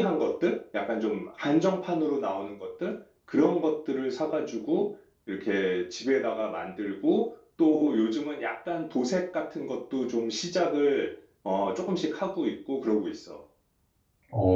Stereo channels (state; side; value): identical; both; correlation 1.00